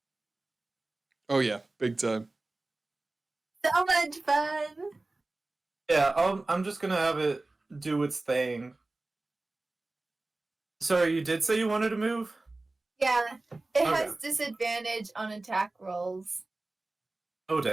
Oh yeah, big time. So much fun. Yeah, I'm just going to have it do its thing. Sorry, you did say you wanted to move? Yeah, it Okay. has disadvantage on attack rolls. Oh,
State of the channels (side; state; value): left; quieter; 3.1 dB